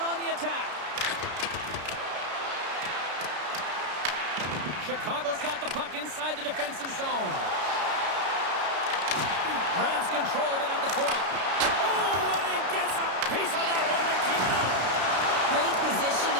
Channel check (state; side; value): late; left; 33 ms